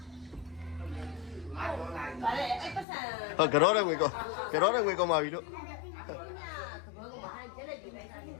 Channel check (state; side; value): drops out; right; at 2.9 s